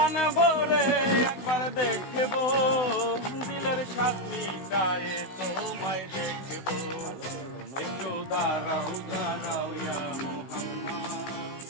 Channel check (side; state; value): right; late; 16 ms